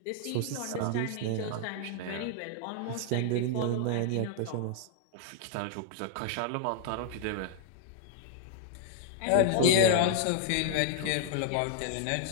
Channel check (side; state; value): both; different; correlation -0.01